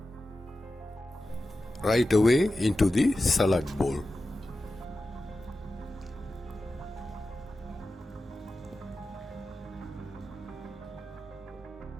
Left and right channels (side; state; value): both; normal; correlation 0.93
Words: Right away into the salad bowl.